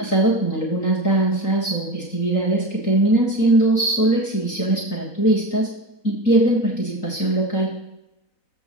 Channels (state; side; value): late; right; 3.8 ms